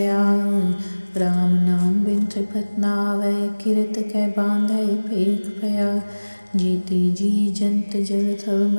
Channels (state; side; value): inverted; both; correlation -1.00